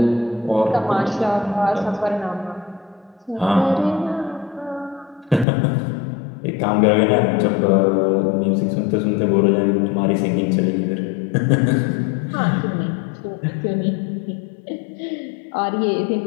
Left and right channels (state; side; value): drops out; right; at 5.5 s